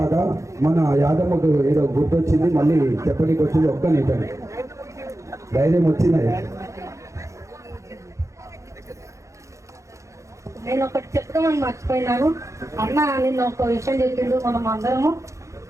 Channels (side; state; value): left; late; 0.15 ms